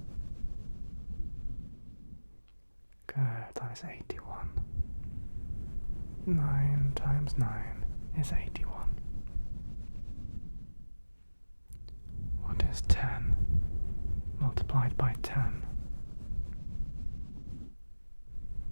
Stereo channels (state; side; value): inverted; both; correlation -1.00